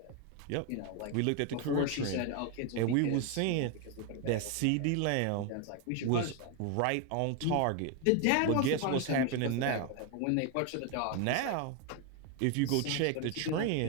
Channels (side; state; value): both; different; correlation 0.01